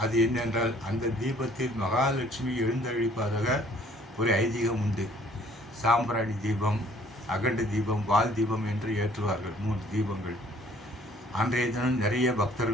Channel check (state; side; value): normal; both; correlation 0.58